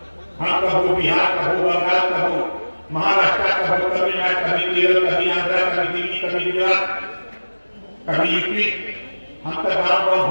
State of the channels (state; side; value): inverted; both; correlation -1.00